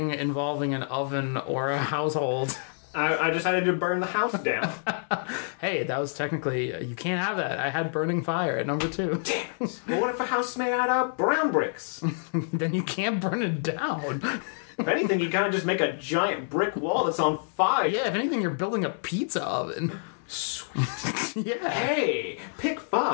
involving an oven or a household. I decided to burn the house down. Hey, that was technically... you can't have that. I had burning fire at number 2. Damn it. But what if a house is made out of brown bricks? Then you can't burn it down. If anything, you kind of just make a giant brick wall that's on fire. Yeah, if anything, you're building a pizza oven. Sweet. Yeah. Hey, pick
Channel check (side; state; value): right; silent; digital silence